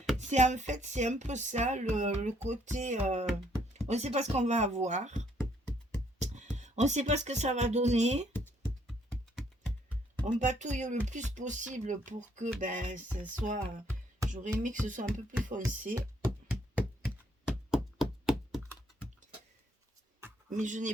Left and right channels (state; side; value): normal; both; correlation 0.67